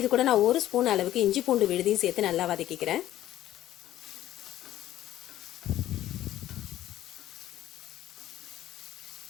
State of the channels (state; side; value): quieter; right; 13.4 dB